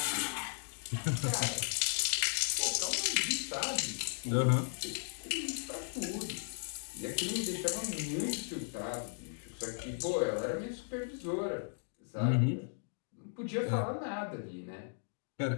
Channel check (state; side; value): silent; right; digital silence